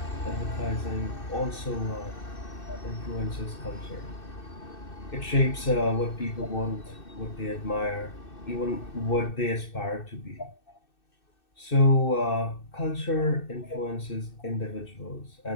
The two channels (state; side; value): late; right; 2.6 ms